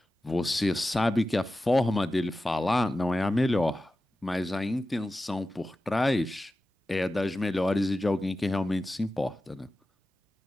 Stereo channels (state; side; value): normal; both; correlation 0.94